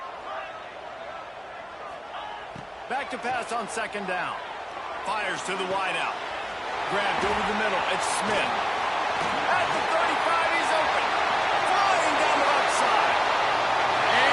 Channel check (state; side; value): identical; both; correlation 1.00